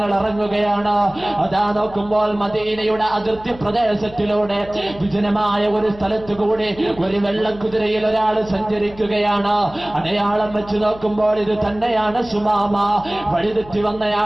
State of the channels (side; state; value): left; noise; hum, 19 dB below the sound